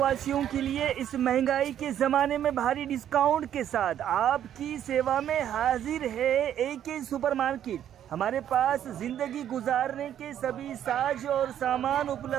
के लिए इस महंगाई के जमाने में भारी डिस्काउंट के साथ आपकी सेवा में हाजिर है AK सुपरमार्केट। हमारे पास जिंदगी गुजारने के सभी साज और सामान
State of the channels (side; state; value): left; quieter; 10.4 dB